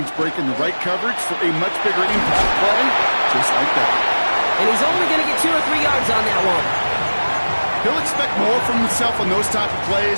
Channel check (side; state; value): both; inverted; correlation -1.00